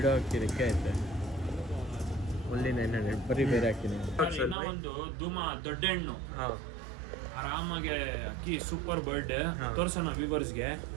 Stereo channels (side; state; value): left; drops out; at 4.5 s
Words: ಅಕ್ಕಿ ರೆಕ್ಕೆ ಐತೆ. ಓನ್ಲಿ 900. ಬರೀ ಬೇರೆ ಅಕ್ಕಿನೇ. ಒಂದು ಧೂಮ ದೊಡ್ಡ ಹೆಣ್ಣು ಹಾಂ ಆರಾಮಾಗೆ ಅಕ್ಕಿ ಸೂಪರ್ ಬರ್ಡ್ ಹಾ. ತೋರ್ಸೋಣ ವ್ಯೂವರ್ಸ್ಗೆ.